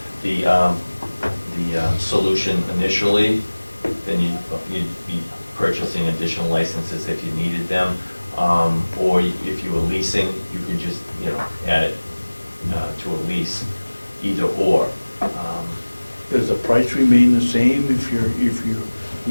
the solution initially, then you'd be purchasing additional licenses if you needed them. Or if you were leasing, you could just, add it to a lease, either or. Does the price remain the same if you're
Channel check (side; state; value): both; inverted; correlation -1.00